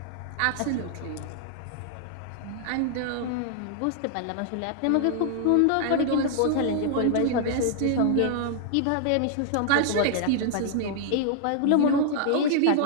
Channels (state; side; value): different; both; correlation -0.01